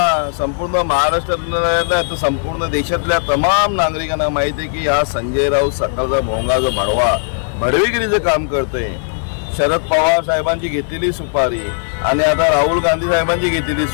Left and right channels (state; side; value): silent; right; digital silence